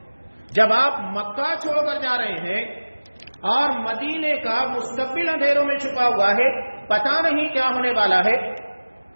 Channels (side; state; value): both; inverted; correlation -1.00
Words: جب آپ مکہ چھوڑ کر جا رہے ہیں اور مدینے کا مستقبل اندھیروں میں چھپا ہوا ہے، پتہ نہیں کیا ہونے والا ہے،